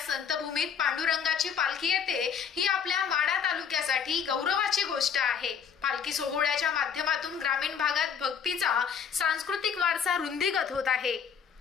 संतभूमीत पांडुरंगाची पालखी येते ही आपल्या माढा तालुक्यासाठी गौरवाची गोष्ट आहे। पालखी सोहळ्याच्या माध्यमातून ग्रामीण भागात भक्तीचा सांस्कृतिक वारसा रुंदीगत होत आहे।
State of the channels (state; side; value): quieter; right; 7.2 dB